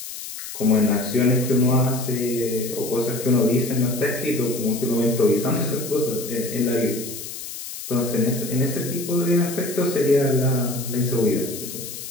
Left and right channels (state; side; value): noise; left; hiss, 10 dB below the sound